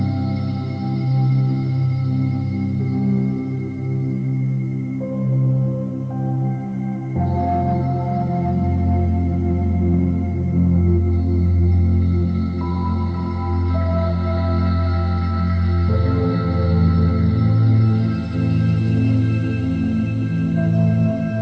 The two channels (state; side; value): identical; both; correlation 1.00